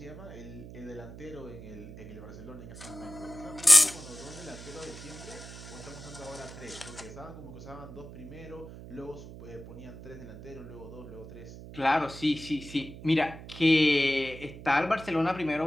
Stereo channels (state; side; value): noise; right; hum, 13 dB below the sound